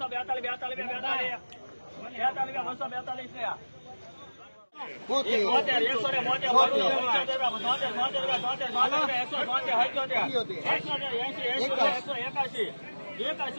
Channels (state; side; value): inverted; both; correlation -1.00